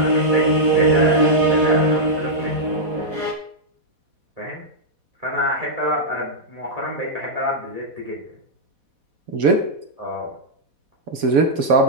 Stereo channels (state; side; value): late; left; 4.1 ms